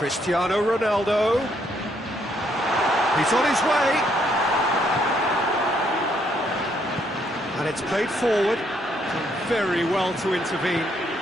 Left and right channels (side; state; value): both; normal; correlation 0.71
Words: Ronaldo. He's on his way. And it's played forward. Done very well to intervene.